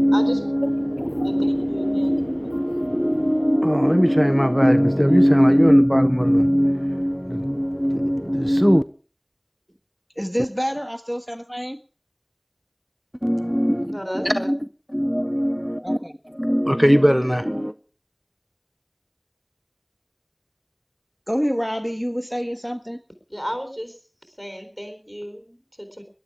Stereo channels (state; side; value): identical; both; correlation 1.00